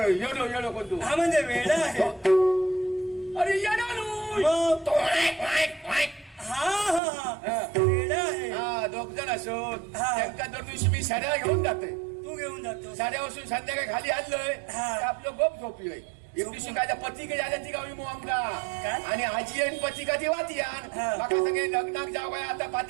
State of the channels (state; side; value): drops out; left; at 7.0 s